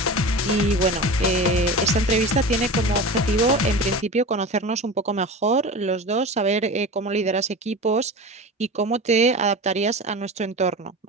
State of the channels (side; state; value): both; normal; correlation 0.30